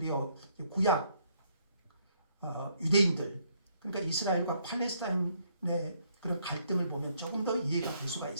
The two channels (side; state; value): both; inverted; correlation -0.70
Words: 구약 유대인들, 그러니까 이스라엘과 팔레스타인의 그런 갈등을 보면 조금 더 이해가 될 수가